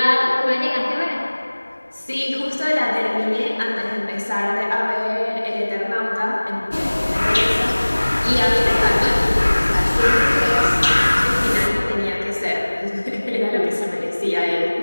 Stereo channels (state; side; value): inverted; both; correlation -1.00